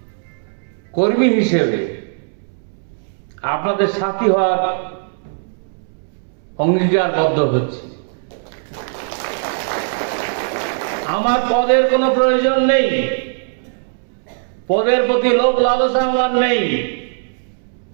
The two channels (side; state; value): left; silent; 66 dB below the other